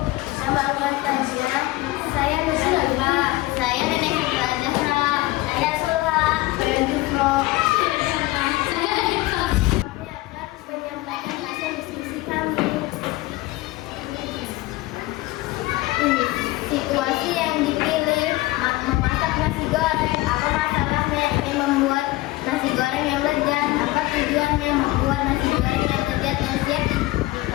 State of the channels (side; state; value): right; quieter; 18.8 dB